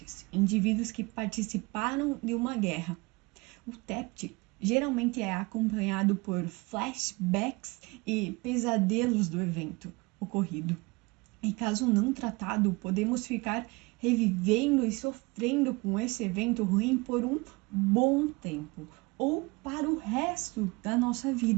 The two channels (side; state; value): left; quieter; 25.3 dB